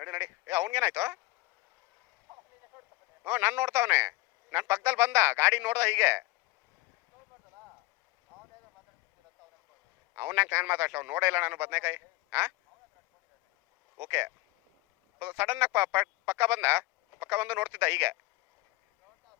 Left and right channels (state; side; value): quieter; right; 20.9 dB